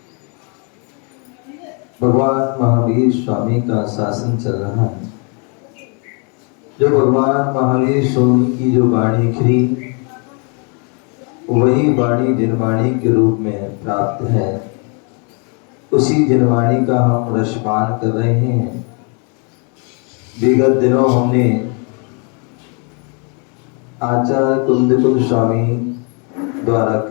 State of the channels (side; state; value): right; quieter; 36.5 dB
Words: भगवान महावीर स्वामी का शासन चल रहा है। जो भगवान महावीर स्वामी की जो वाणी खिली, वही वाणी जिनवाणी के रूप में प्राप्त है। उसी जिनवाणी का हम रसपान कर रहे हैं। विगत दिनों हमने आचार्य कुंद कुंद स्वामी द्वारा